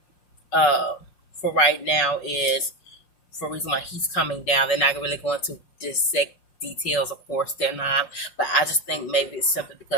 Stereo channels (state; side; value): late; right; 5.3 ms